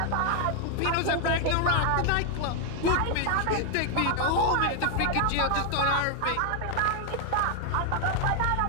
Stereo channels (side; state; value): both; different; correlation 0.00